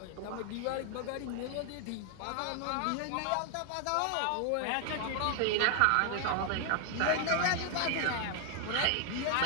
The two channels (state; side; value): different; both; correlation 0.00